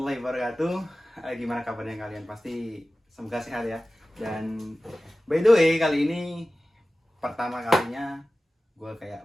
wabarakatuh. Gimana kabarnya kalian? Pasti semoga sehat ya. Dan by the way, kali ini pertama kalinya gue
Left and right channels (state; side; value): normal; both; correlation 0.96